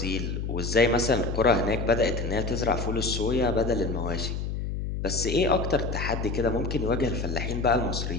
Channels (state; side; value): noise; left; hum, 3 dB below the sound